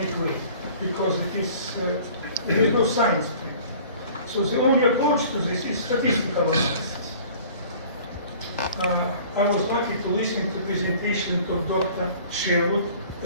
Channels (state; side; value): inverted; both; correlation -0.48